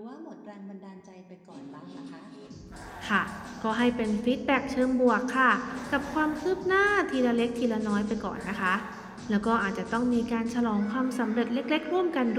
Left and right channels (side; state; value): both; identical; correlation 1.00